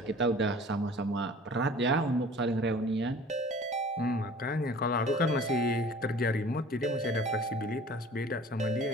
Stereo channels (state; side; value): normal; both; correlation 0.46